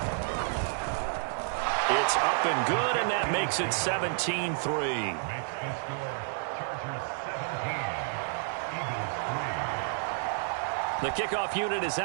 It's up and good, and that makes it 17-3. The kickoff unit is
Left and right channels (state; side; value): silent; left; 58 dB below the other